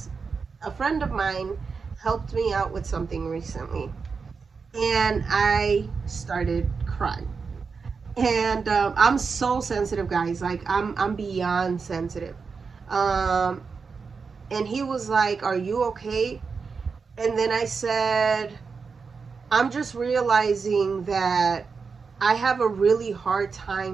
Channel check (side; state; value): left; quieter; 5.1 dB